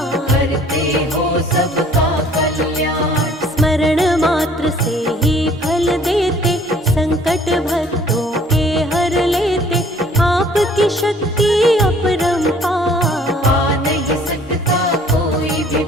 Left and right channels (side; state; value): both; normal; correlation 0.55